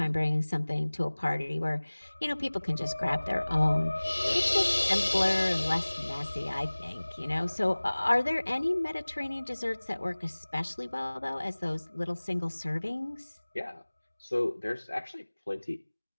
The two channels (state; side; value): inverted; both; correlation -1.00